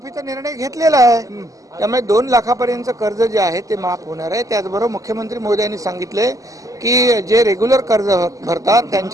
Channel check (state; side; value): late; left; 0.16 ms